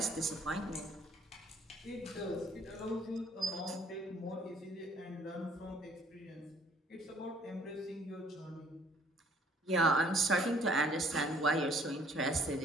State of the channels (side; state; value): both; normal; correlation 0.59